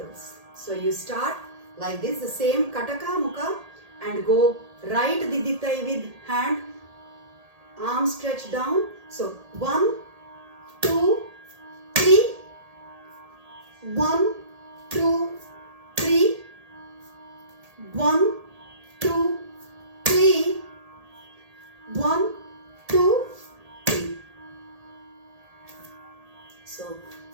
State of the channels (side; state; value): left; late; 1.8 ms